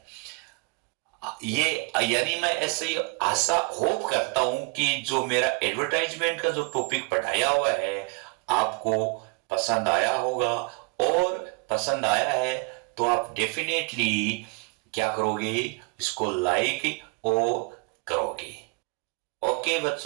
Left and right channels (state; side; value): quieter; left; 31.5 dB